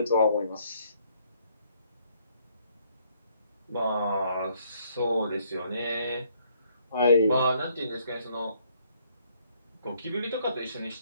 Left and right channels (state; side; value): inverted; both; correlation -0.67